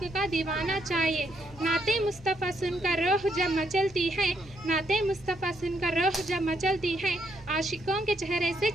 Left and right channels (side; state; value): right; noise; hum, 21 dB below the sound